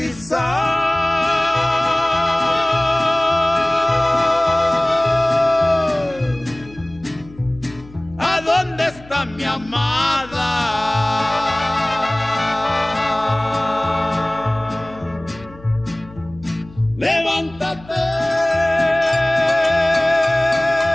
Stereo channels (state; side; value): noise; left; hum, 21 dB below the sound